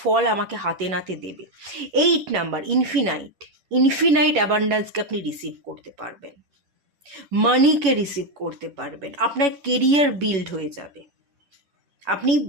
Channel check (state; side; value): late; left; 11 ms